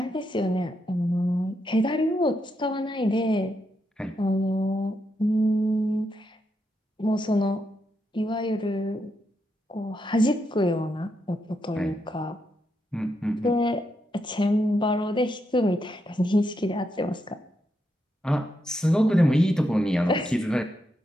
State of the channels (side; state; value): both; normal; correlation 0.82